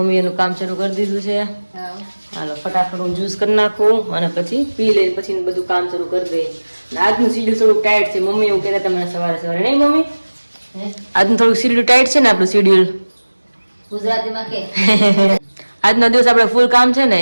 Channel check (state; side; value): inverted; both; correlation -1.00